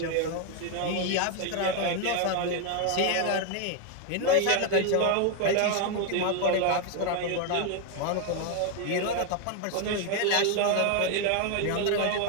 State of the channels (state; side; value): different; both; correlation 0.01